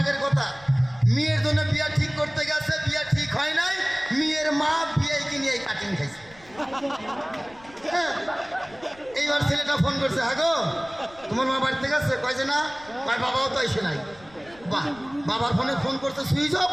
কথা। মেয়ের জন্য বিয়ে ঠিক করতে গেছে, বিয়ে ঠিক হয় নাই, মেয়ের মা বিয়ে কিনে এই কাটিং খাইছে। এইবার ছেলেটা ফোন করছে, হ্যাঁ গো তোমার মা বাড়িতে গেছে? কয় যে না। কয় বাবাও তো এসে নাই। বাহ, বাবার ফোনে ফোন করতে সুইচ অফ,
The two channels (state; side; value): noise; left; rumble, 24 dB below the sound